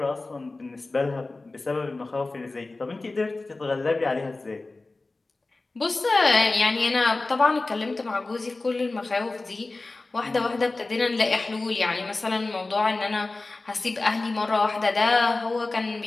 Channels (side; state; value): right; quieter; 3.3 dB